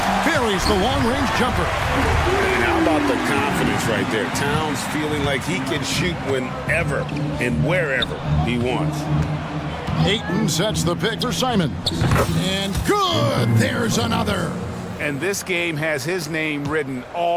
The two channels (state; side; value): identical; both; correlation 1.00